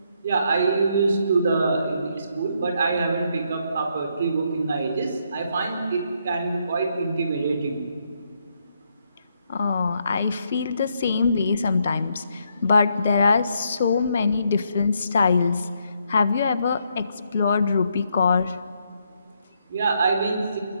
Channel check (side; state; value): both; inverted; correlation -0.76